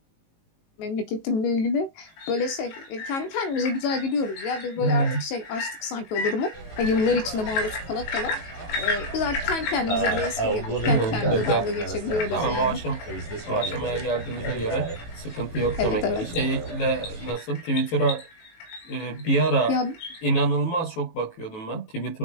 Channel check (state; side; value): late; right; 18 ms